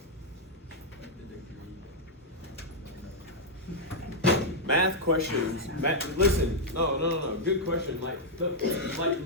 Math questions. Listen, no. Good question. Like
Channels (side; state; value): both; normal; correlation -0.04